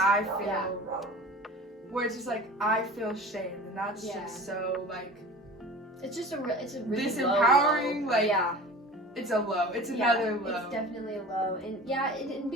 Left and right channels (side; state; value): both; normal; correlation 0.39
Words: feel, where it's just like, I feel shame. And that's just so, like, it's just it's a really disempowering, low. Like, it's a low. It's another low. It's definitely a low. And and